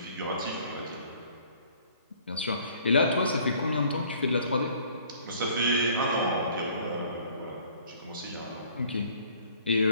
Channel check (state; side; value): inverted; both; correlation -0.55